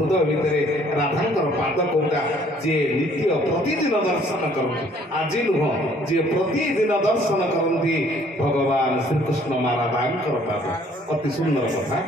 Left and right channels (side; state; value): both; normal; correlation 0.60